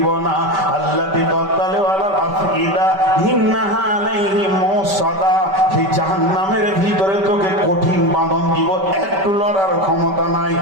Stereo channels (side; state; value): left; late; 5.2 ms